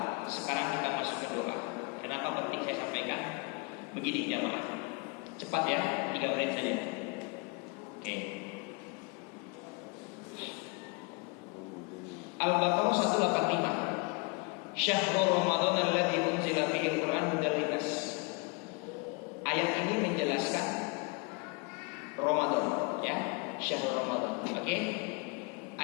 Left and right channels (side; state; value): right; quieter; 32.1 dB